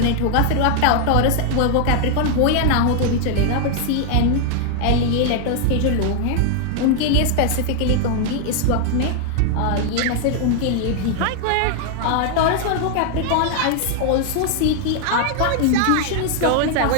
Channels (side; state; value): both; different; correlation 0.00